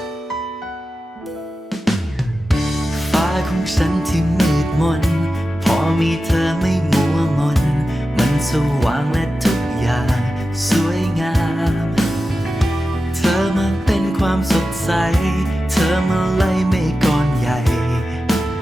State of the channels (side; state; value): both; normal; correlation 0.93